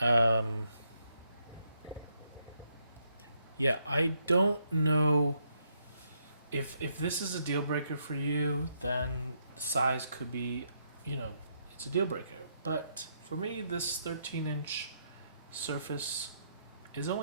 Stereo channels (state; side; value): inverted; both; correlation -0.76